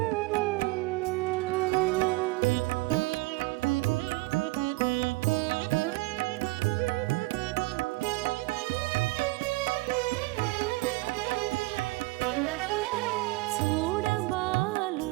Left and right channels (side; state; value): left; quieter; 22.7 dB